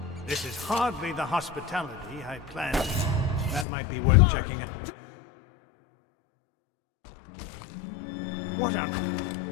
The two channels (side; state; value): right; drops out; at 3.7 s